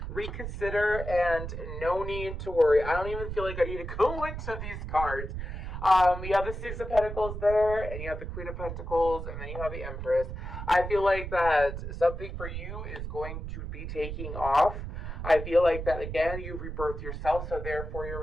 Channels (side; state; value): right; noise; rumble, 7 dB below the sound